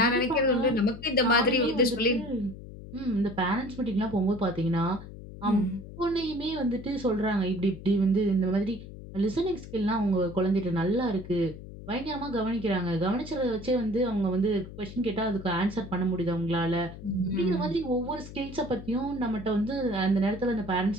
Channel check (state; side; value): noise; left; hum, 14 dB below the sound